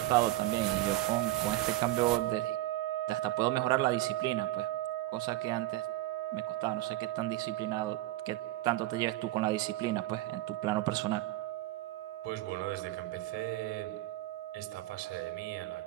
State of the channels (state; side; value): quieter; left; 16.3 dB